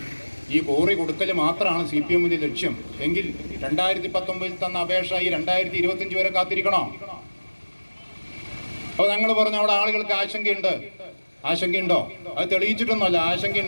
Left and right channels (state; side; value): inverted; both; correlation -1.00